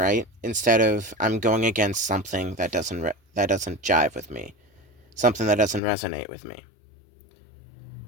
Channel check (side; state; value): right; drops out; at 5.8 s